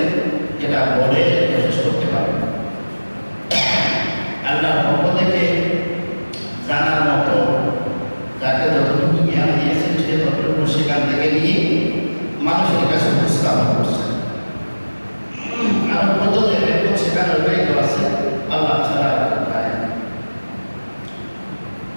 যেটা বলে শেষ করতে পারবে না। আল্লাহর পক্ষ থেকে জানার মতো যাকে যতটুকু জ্ঞান দিয়েছেন সে ততটুকু সেখান থেকে নিয়ে মানুষের কাছে উপস্থাপন করছেন। আর কত সেখানে রয়ে আছে আল্লাহ ছাড়া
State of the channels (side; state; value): both; inverted; correlation -1.00